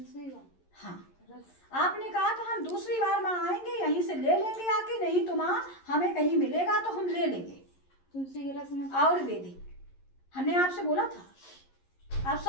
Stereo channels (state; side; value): late; right; 11 ms